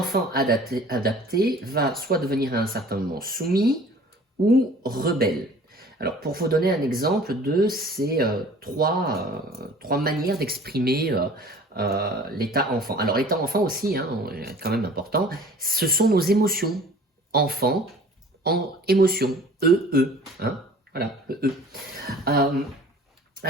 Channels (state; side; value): normal; both; correlation 0.48